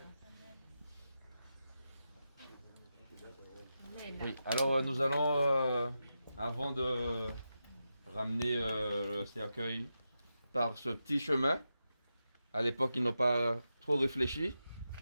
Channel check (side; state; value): both; inverted; correlation -0.89